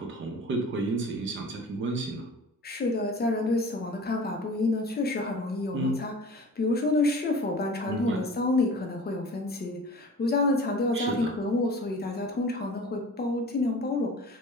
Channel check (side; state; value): both; normal; correlation 0.41